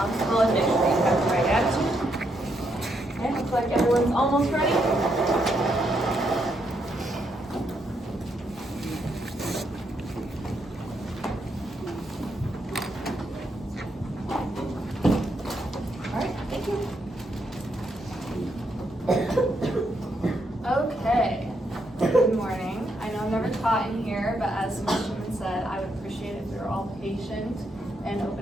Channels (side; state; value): both; normal; correlation 0.78